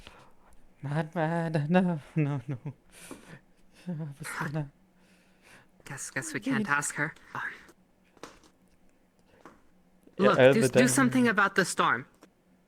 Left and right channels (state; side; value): identical; both; correlation 1.00